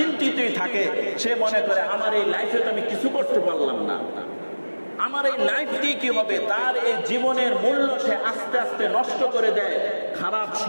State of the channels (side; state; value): both; inverted; correlation -1.00